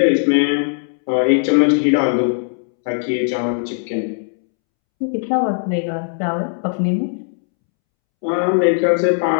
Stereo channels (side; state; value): right; silent; 67 dB below the other